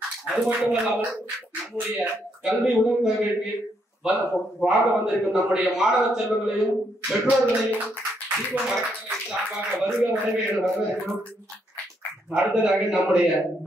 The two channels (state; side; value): normal; both; correlation 0.75